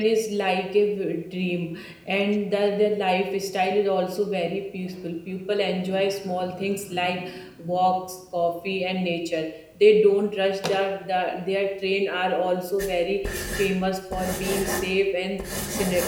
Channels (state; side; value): identical; both; correlation 1.00